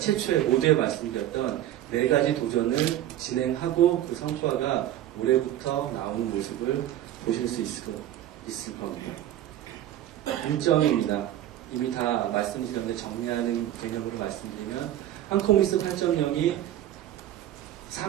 모두에 말씀드렸던 네 가지 도전을 진행하고 그 성과가 올해부터 나오는 모습을 보실 수 있을 겁니다. 일정입니다. 이미 다 말씀드렸는데 정리하는 개념으로 말씀드리면 한코미스 8.0이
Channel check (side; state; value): left; quieter; 12.6 dB